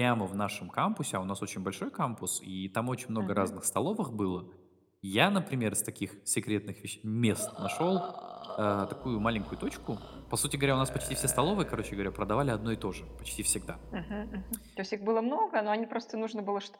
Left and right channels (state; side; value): identical; both; correlation 1.00